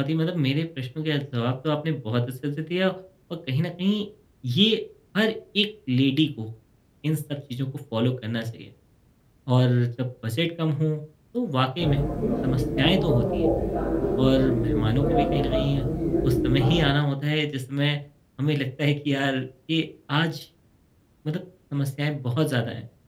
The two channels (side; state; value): both; identical; correlation 1.00